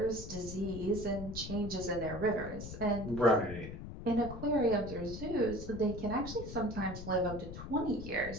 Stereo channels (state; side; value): noise; left; rumble, 9 dB below the sound